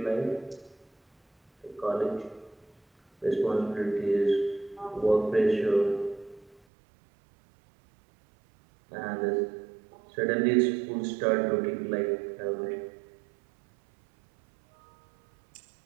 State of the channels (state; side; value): drops out; left; at 6.6 s